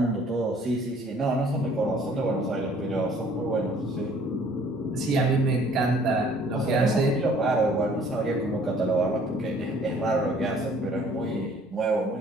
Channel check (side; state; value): both; normal; correlation 0.57